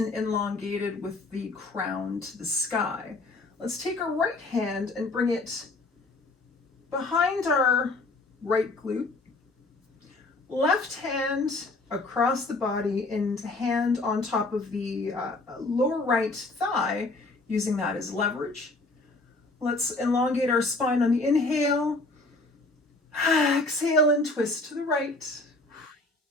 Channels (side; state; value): right; quieter; 3.0 dB